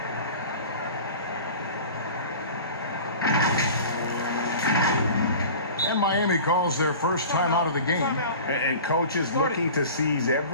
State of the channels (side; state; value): both; inverted; correlation -0.39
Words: And Miami calls their first time out of the game. And coach is looking to seize